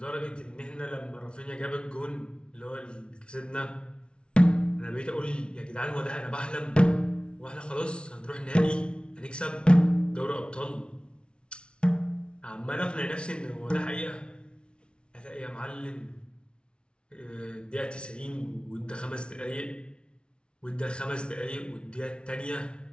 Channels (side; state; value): right; late; 0.057 ms